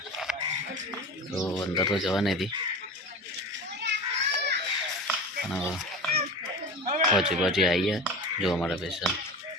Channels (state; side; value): normal; both; correlation 0.32